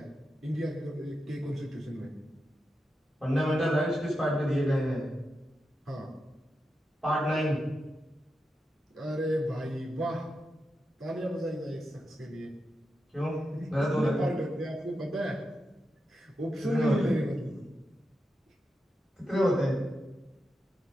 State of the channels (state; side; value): normal; both; correlation 0.88